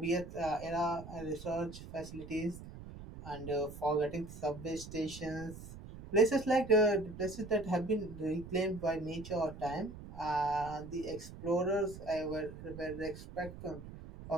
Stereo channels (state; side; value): noise; right; rumble, 13 dB below the sound